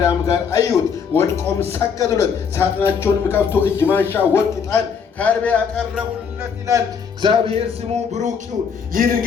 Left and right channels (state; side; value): quieter; right; 6.5 dB